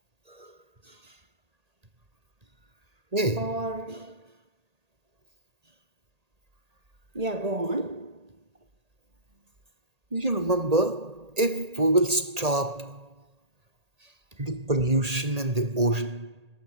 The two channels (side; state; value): left; late; 1.8 ms